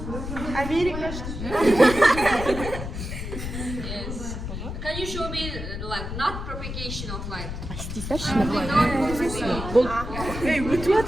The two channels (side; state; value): left; noise; rumble, 6 dB below the sound